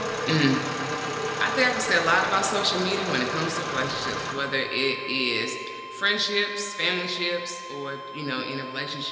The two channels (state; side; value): identical; both; correlation 1.00